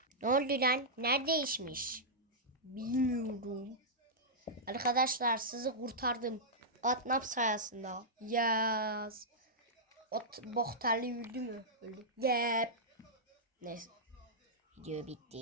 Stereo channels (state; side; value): normal; both; correlation -0.11